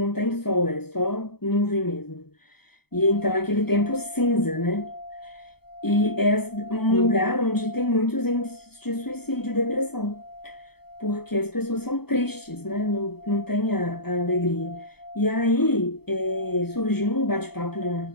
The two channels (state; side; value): late; right; 0.96 ms